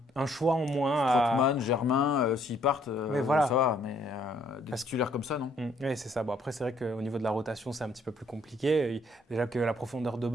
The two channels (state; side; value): normal; both; correlation 0.66